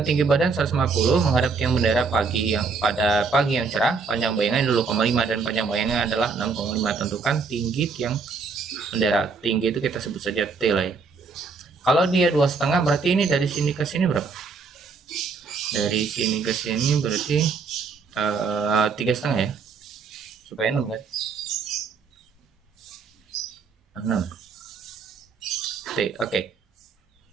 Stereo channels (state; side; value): quieter; left; 4.8 dB